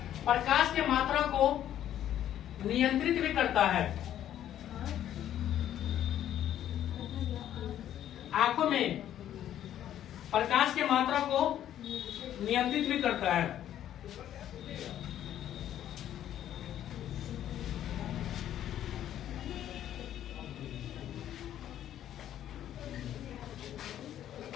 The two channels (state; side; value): quieter; right; 11.3 dB